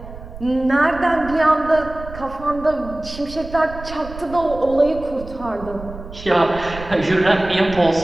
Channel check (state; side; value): noise; right; rumble, 14 dB below the sound